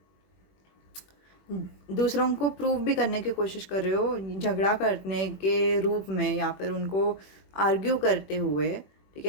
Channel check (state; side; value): late; right; 21 ms